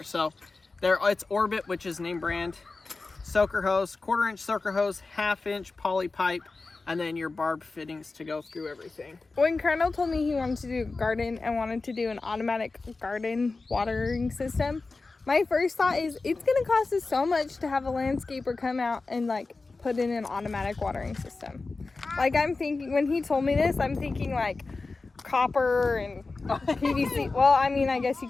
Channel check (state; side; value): quieter; right; 3.7 dB